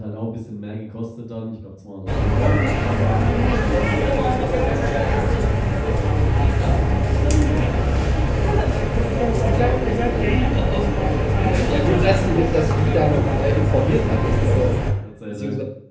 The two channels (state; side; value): identical; both; correlation 1.00